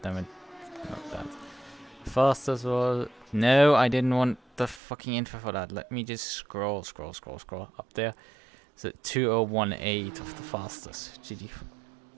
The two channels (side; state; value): left; drops out; at 4.8 s